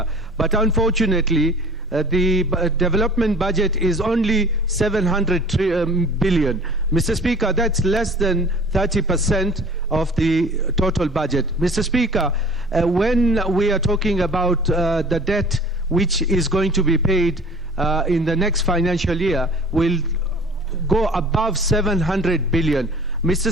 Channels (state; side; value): normal; both; correlation 0.46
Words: But unfortunately, the development budget is only 700 billion. Mr. Speaker, that's less than 30% of the total budget. Mr. Speaker, when we are talking about the debt which is going to be paid in the next financial year, will go above 700 billion. Mr.